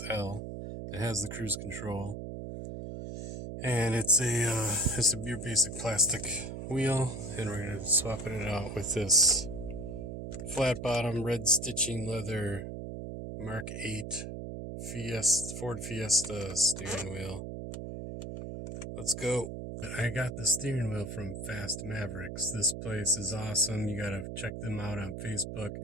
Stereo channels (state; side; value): noise; right; hum, 7 dB below the sound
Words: It has the cruise control, and it's your basic plastic wheel, and we're going to be swapping it out with this flat bottom, red stitching leather MK8 Ford Fiesta steering wheel. Let's go. I got the steering wheel from Fast Mavericks. This place is awesome. You gotta check them out on Facebook.